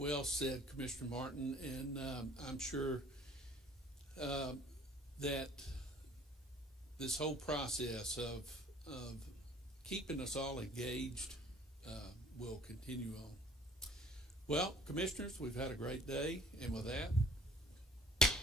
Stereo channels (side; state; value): both; normal; correlation 0.52